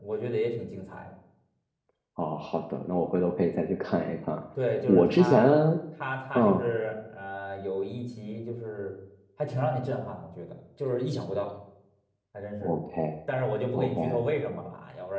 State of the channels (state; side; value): identical; both; correlation 1.00